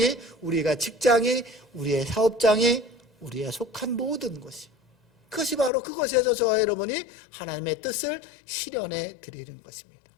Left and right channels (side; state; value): right; drops out; at 5.7 s